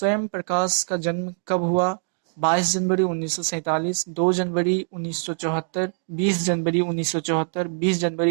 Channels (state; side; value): silent; left; digital silence